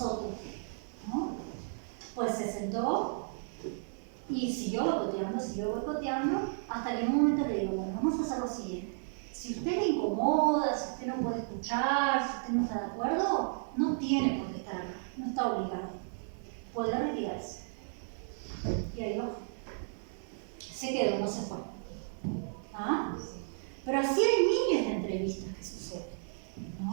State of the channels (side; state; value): left; silent; digital silence